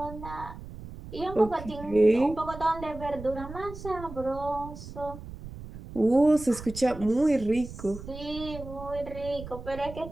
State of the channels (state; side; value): noise; right; rumble, 13 dB below the sound